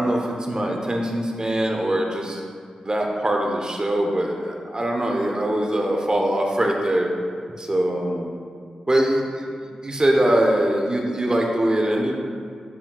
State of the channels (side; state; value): both; normal; correlation 0.93